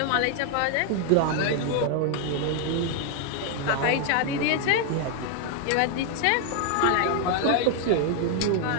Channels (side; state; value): both; different; correlation 0.00